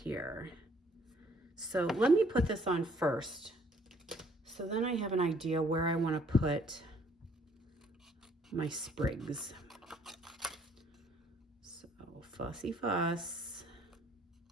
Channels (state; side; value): normal; both; correlation 0.62